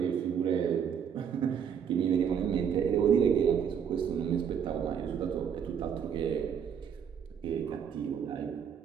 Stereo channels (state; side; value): quieter; left; 7.8 dB